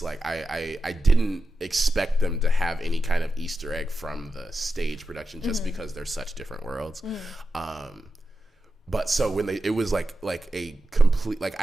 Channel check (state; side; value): normal; both; correlation 0.90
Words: like I didn't expect them to have any kind of Easter egg from the stage production, just because they're such different worlds. But so when it was like a complete, like